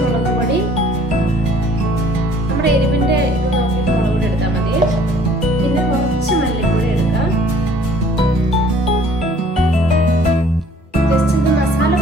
മുളക് പൊടി, നമ്മുടെ എരിവിന്റെ ഇത് നോക്കിയിട്ട് മുളക് പൊടി എടുത്താൽ മതി. പിന്നെ കുറച്ച് മല്ലിപ്പൊടി എടുക്കാം. ജസ്റ്റ് ഇത് മസാല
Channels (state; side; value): normal; both; correlation 0.56